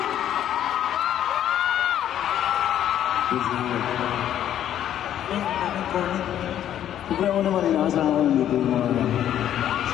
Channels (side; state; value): right; quieter; 10.9 dB